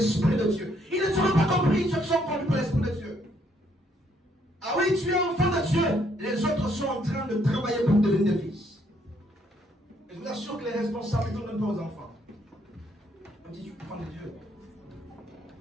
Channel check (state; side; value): normal; both; correlation 0.70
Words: de Dieu. Ils ne seront pas compris, ceux qui sont conduits par l'Esprit de Dieu. Ah oui, tu es enfant de Dieu. Les autres sont en train de travailler pour devenir des fils. Et je vous assure que les responsabilités ne donnent pas aux enfants. On dit, tu es enfant de Dieu.